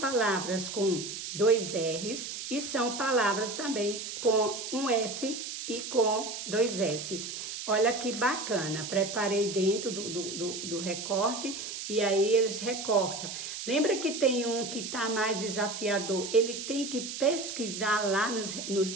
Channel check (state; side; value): noise; right; hiss, 7 dB below the sound